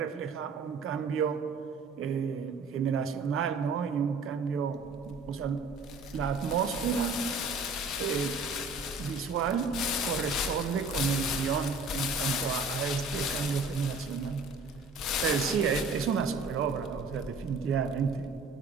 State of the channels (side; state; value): left; quieter; 3.5 dB